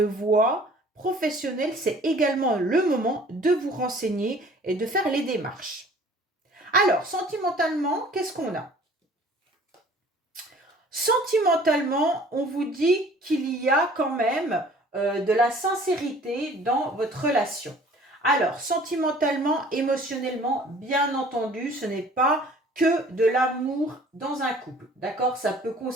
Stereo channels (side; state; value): both; normal; correlation 0.51